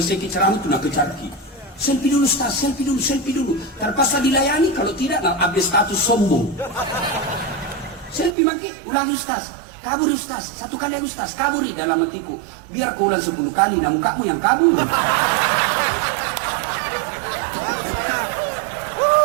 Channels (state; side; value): drops out; left; at 8.3 s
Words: ceramah itu nak kecarki. Selfie dulu, Ustaz, selfie dulu. Terpaksa dilayani, kalau tidak, nak update status sombong. Selfie maki, ulangi Ustaz. Kabur Ustaz, satu kali Ustaz, kaburi dalam hatiku. Biar kau ulang 10 kali, namun kamu yang kabur.